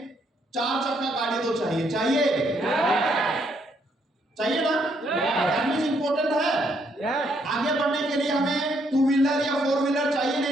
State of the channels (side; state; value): both; normal; correlation 0.72